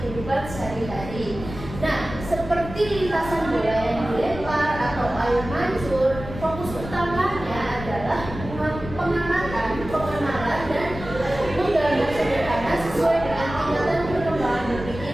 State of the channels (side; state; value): left; noise; rumble, 11 dB below the sound